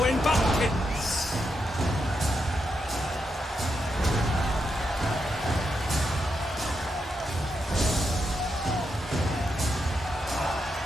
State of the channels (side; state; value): both; normal; correlation 0.84